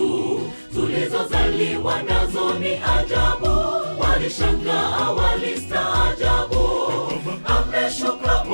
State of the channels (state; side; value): inverted; both; correlation -1.00